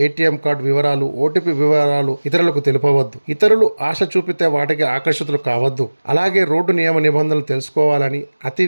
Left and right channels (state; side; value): inverted; both; correlation -1.00